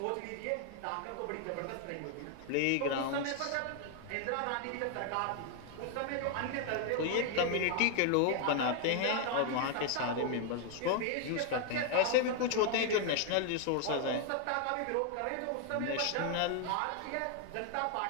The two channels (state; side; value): different; both; correlation 0.00